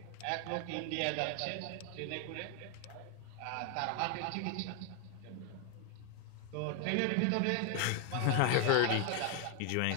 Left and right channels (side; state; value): both; different; correlation 0.00